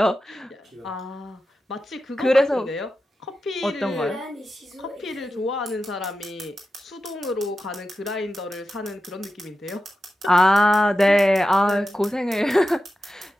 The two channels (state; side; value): normal; both; correlation 0.91